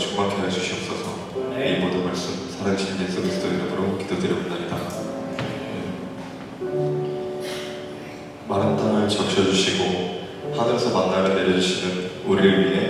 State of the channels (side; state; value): both; identical; correlation 1.00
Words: 해주시옵소서. 이 모든 말씀 살아계신 예수 그리스도 이름으로 기도드립니다. 마른 땅을 적셔주시고 하늘에서 만나를 내려주시는 우리를